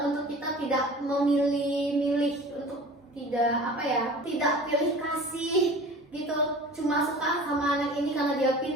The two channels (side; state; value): both; normal; correlation 0.41